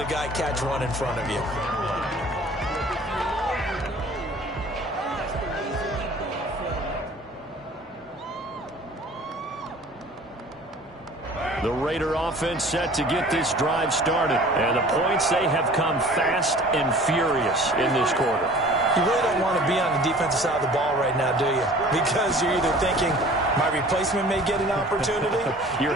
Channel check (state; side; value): normal; both; correlation 0.47